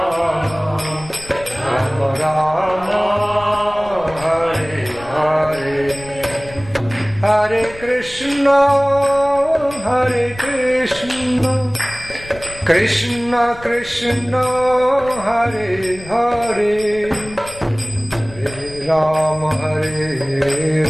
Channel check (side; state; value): left; noise; rumble, 18 dB below the sound